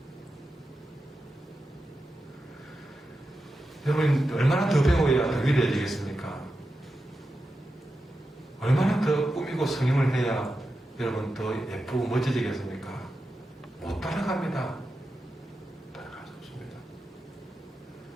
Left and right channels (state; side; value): normal; both; correlation 0.90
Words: 여러분, 얼마나 더 배워야 더 위대해지겠습니까? 얼마나 더 꾸미고 성형을 해야 여러분 더 예쁘고 멋지지겠습니까? 못 따라갑니다. 따라갈 수 없습니다.